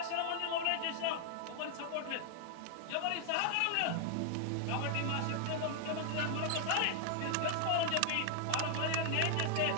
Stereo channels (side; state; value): both; different; correlation 0.00